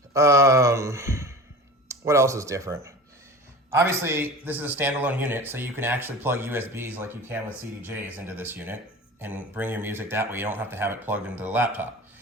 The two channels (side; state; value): both; normal; correlation 0.35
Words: What else is different? Obviously, this is a standalone unit, so you can actually plug USBs like you can with CDJs into this unit and bring your music that way. You don't have to have it plugged into the laptop.